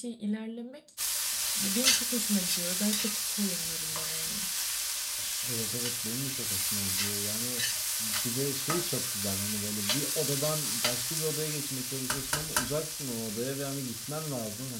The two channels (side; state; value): both; identical; correlation 1.00